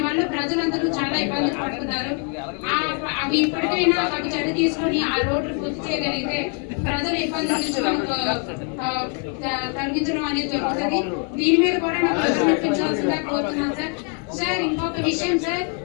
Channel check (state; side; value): quieter; right; 38.3 dB